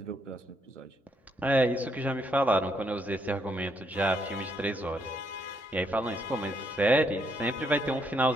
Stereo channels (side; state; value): both; normal; correlation 0.74